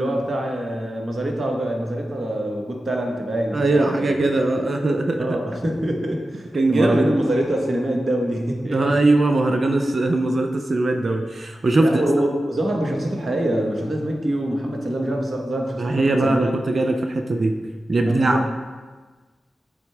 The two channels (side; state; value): both; normal; correlation 0.93